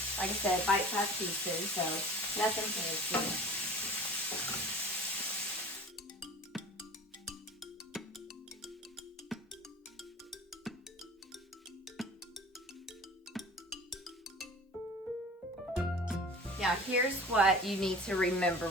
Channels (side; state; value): both; normal; correlation 0.42